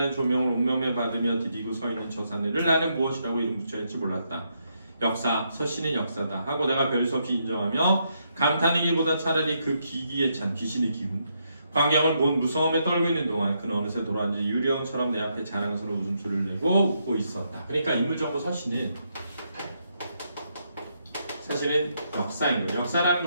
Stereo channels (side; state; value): both; inverted; correlation -0.78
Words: 조명을 온몸에 받으며 디디고 서 있는 저 사내를 나는 무엇이라고 이름 붙여야 할지 몰랐다. 역사, 서씨는 역사다 하고 내가 별 수 없이 인정하며 감탄이기보다 차라리 그 기기에 찬 귀신의 기분 광경을 본 무서움에 떨고 있는 동안 그는 어느새 돌아앉은 유령처럼 내 앞에 자랑스러운 웃음소리를 내고 웃고 있었다. 그러니까 인물정보 서씨는 사실은 역사인 거예요. 역사라는